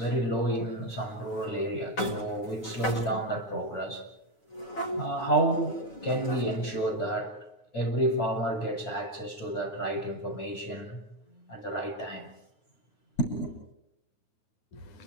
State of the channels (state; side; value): late; right; 9.2 ms